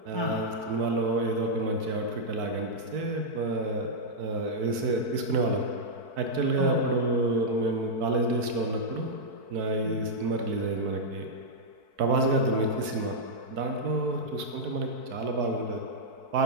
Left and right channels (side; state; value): left; late; 4.6 ms